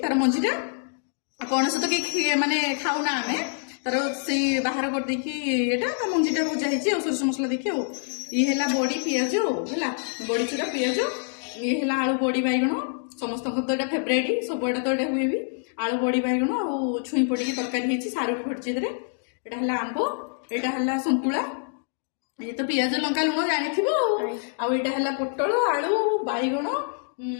ତାର ମଞ୍ଜି ଟା। ପଣସ ତ କେହି ମାନେ ଖାଉନା ଆମେ ତାର ସେଇ ବାହାର କରିଦେଇକି ଏଟା ତା ମଞ୍ଜି ଟା ଭଜା ହେଇଛି ଆଉ ସୋରିଷ ମସଲା ଦେଇକି ଆଉ। ଇଏ ହେଲା ବଡି ପିଆଜ ହେଲା ବଡି ଚୁରା ପିଆଜ। ଇଏ ହେଲା ଆଳୁ ବଡି ବାଇଗଣ ସମସ୍ତଙ୍କର ତ ଏଇଟା ଫେବରାଇଟ ସବୁଆଡେ ତ ଏଇଟା ହୁଏ ବି। ଆଳୁ ବଡି ବାଇଗଣ ଆଉ ଛୁଇଁ ପଡିକି ତରକାରୀ ହେଇଛି ସାରୁ ବି ପଡିଛି ଏଥିରେ। ଏଇଟା ହେଲା ଆମ୍ବ ଏଇଟା ହେଲା ସନ୍ତୁଳା। ଇଏ ତ ପିଆଜ ଲଙ୍କା ଲୁଣ ଜାଣିଥିବ ଆଉ ଏଇଟା ହେଲା ପୋଟଳ ଆଳୁ ବାଇଗଣ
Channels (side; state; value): right; silent; 61 dB below the other